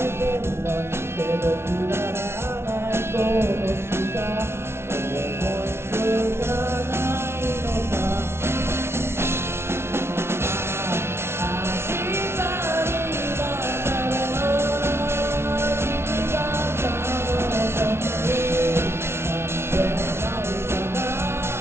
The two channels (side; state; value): left; late; 0.12 ms